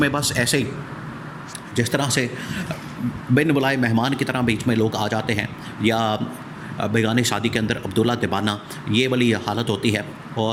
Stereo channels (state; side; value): identical; both; correlation 1.00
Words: میں بس ایسے ہی جس طرح سے بن بلائے مہمان کی طرح بیچ میں لوگ آ جاتے ہیں، یا بیگانی شادی کے اندر عبداللہ تبانہ، یہ والی حالت ہوتی ہے۔